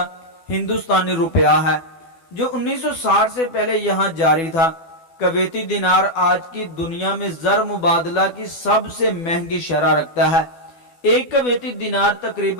ہندوستانی روپیہ ہے جو 1960 سے پہلے یہاں جاری تھا۔ کویتی دینار آج کی دنیا میں زر مبادلہ کی سب سے مہنگی شرح رکھتا ہے۔ ایک کویتی دینار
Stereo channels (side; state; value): right; late; 12 ms